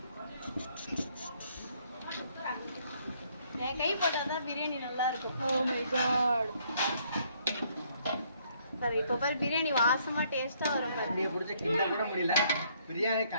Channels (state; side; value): inverted; both; correlation -0.67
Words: என் கை போட்டாதான் பிரியாணி நல்லா இருக்கும். Oh my god. சரி, இப்போ பாரு பிரியாணி வாசமா டேஸ்டா வரும். கரண்டியை பிடிச்ச கிண்ட கூட முடியல. பிரியாணி